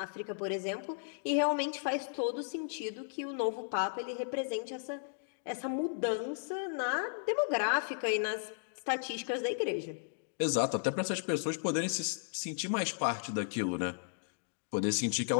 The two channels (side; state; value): right; silent; digital silence